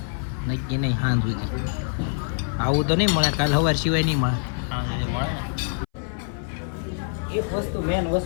નક્કી નહીં. હાન સુધી આવું તો નહીં મળે, કાલ સવાર સિવાય નહીં મળે. એક વસ્તુ મેન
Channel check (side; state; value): right; silent; 60 dB below the other